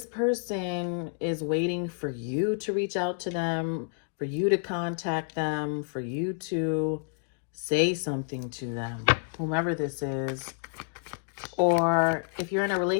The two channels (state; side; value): silent; right; digital silence